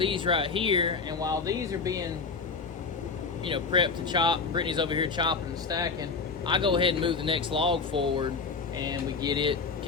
right here. And while these are being, you know, prepped to chop, Brittany's over here chopping and stacking, I go ahead and move the next log forward and we get it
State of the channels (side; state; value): right; quieter; 4.7 dB